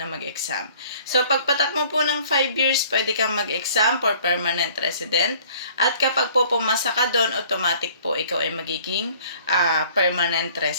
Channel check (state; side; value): inverted; both; correlation -0.54